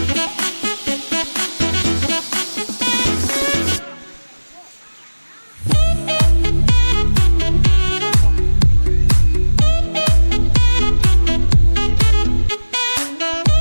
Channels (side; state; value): both; inverted; correlation -1.00